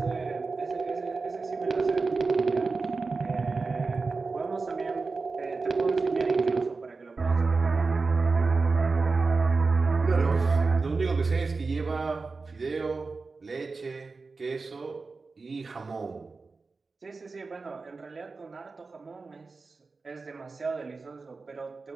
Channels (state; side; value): quieter; left; 4.1 dB